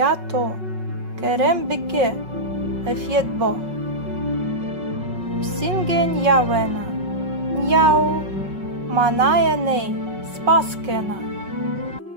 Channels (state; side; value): late; left; 5.4 ms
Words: Керембике ефєтбо. Псінге нявена. Няу. Маная ней спаскена.